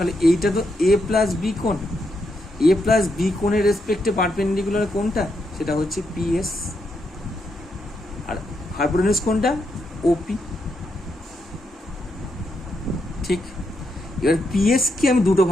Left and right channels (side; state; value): both; normal; correlation 0.81